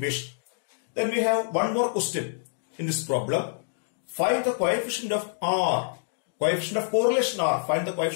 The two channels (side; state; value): right; silent; digital silence